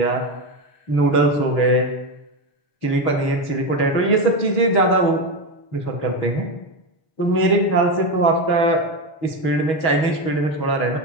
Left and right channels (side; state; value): right; late; 6.3 ms